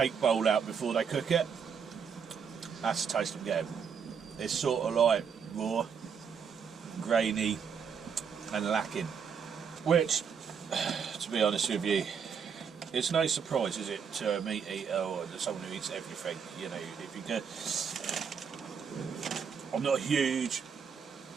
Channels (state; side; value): quieter; left; 6.7 dB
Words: bowl out before they cook it? That's the taste I'm getting. It's sort of like raw, grainy and lacking. Which, to be honest with you, it's no surprise, is it, to a meat eater or to someone who eats everything. You know, if you go, I'm not a huge